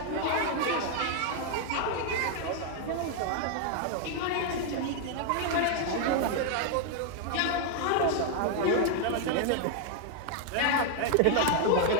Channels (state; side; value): different; both; correlation 0.00